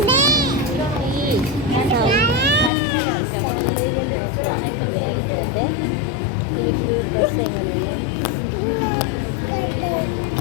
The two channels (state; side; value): drops out; right; at 2.7 s